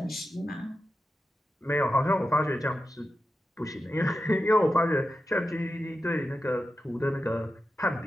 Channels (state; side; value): normal; both; correlation 0.90